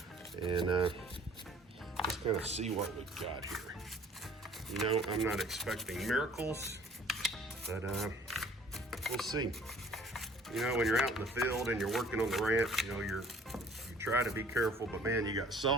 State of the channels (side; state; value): both; normal; correlation 0.53